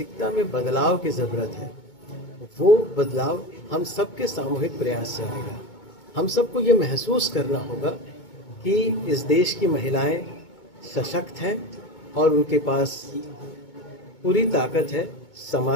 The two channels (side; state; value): right; late; 2.2 ms